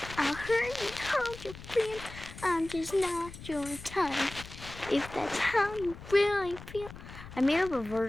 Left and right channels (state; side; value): noise; left; rumble, 14 dB below the sound